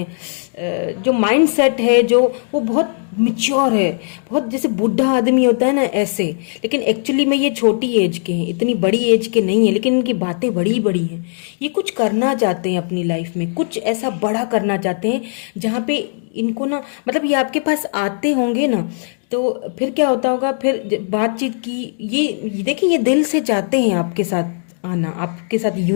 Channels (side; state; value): right; silent; digital silence